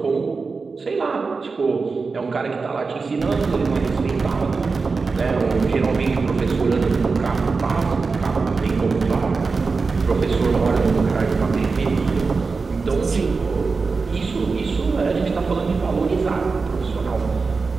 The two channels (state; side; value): quieter; left; 4.4 dB